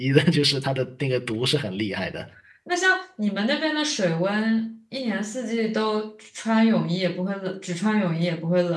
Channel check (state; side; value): identical; both; correlation 1.00